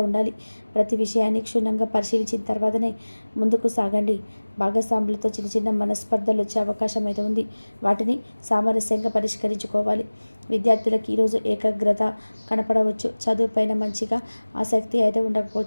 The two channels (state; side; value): inverted; both; correlation -1.00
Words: ఉండాలి. ప్రతి విషయాన్ని క్షుణ్ణంగా పరిశీలించిన తర్వాతనే ముందుకు సాగండి. భాగస్వాములతో చిన్న చిన్న మనస్పర్ధలు వచ్చే అవకాశం అయితే ఉంది. వాటిని సామరస్యంగా పరిష్కరించుకోవాలి. విద్యార్థులకు ఈరోజు ఏకాగ్రత కనపడవచ్చు. చదువుపైన మంచిగా ఆసక్తి అయితే